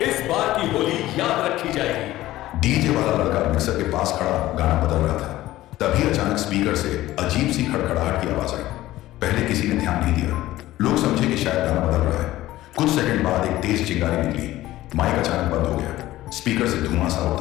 इस बार की होली याद रखी जाएगी। डीजे वाला लड़का मिक्सर के पास खड़ा गाना बदल रहा था। तभी अचानक स्पीकर से अजीब सी खड़खड़ाहट की आवाज आई। पहले किसी ने ध्यान नहीं दिया। लोग समझे कि शायद गाना बदल रहा है। कुछ सेकंड बाद एक तेज चिंगारी निकली। माइक अचानक बंद हो गया। स्पीकर से धुआं सा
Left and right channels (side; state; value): right; quieter; 15.9 dB